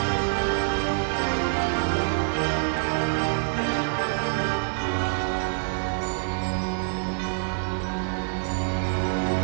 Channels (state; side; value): silent; left; digital silence